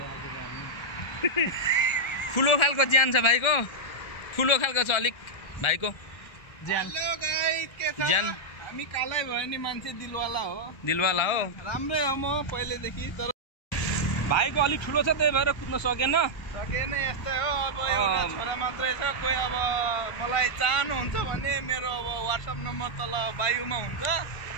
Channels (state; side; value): late; right; 1.3 ms